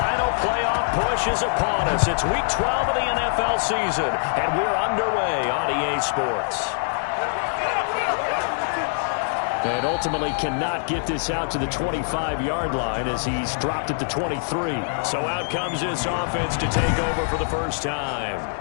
playoff push is upon us. It's Week 12 of the NFL season, and we're underway on EA Sports. And ultimately cannot get this out to the 25-yard line as he's dropped it to 23. So out comes this offense to take over for the first time.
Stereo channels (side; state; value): right; silent; digital silence